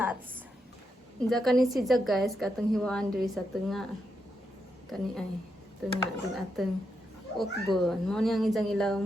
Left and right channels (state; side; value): normal; both; correlation 0.83